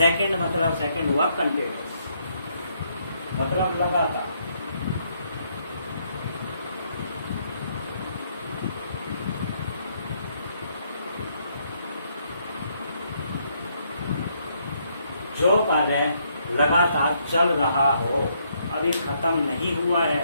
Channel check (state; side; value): inverted; both; correlation -0.72